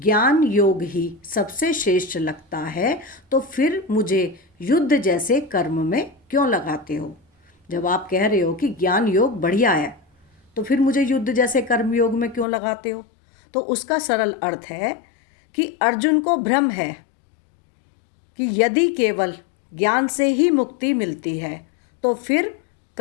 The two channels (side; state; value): right; drops out; at 12.5 s